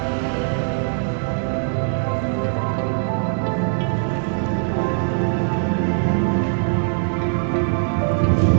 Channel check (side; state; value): left; silent; digital silence